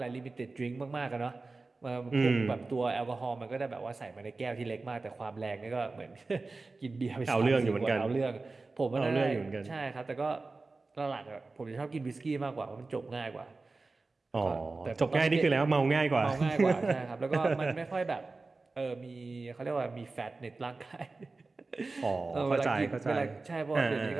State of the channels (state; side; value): quieter; left; 3.6 dB